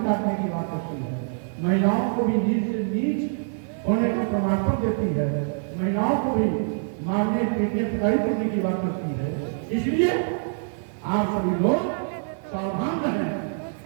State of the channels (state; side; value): silent; left; digital silence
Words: करने की बात करती है, महिलाओं को भी नीच से नीच होने का प्रमाण पत्र देती है, महिलाओं को भी मारने पीटने पिटाई करने की बात करती है। इसलिए आप सभी लोग सावधान रहें,